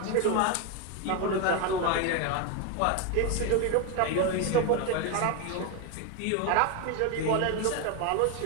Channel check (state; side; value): different; both; correlation 0.02